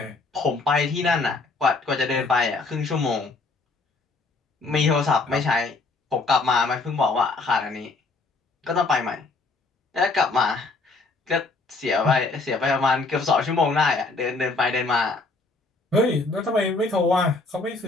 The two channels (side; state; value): right; quieter; 3.6 dB